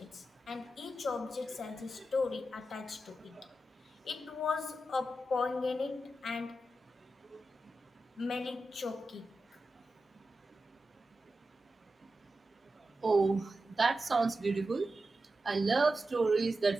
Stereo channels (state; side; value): normal; both; correlation 0.91